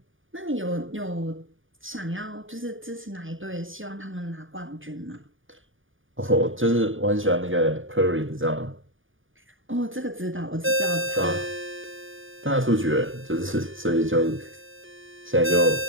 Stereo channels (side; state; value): left; late; 0.58 ms